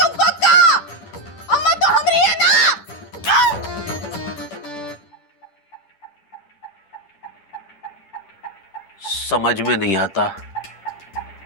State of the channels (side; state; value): right; late; 10 ms